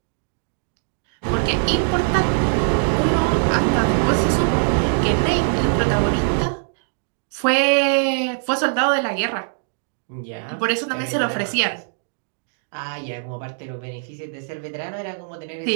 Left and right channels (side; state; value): left; silent; digital silence